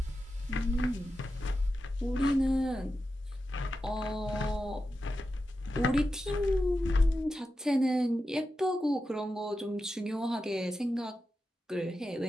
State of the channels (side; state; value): both; normal; correlation 0.90